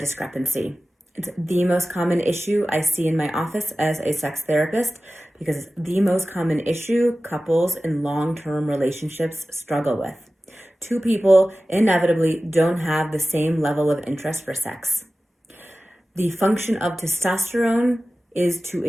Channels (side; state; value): both; normal; correlation 0.96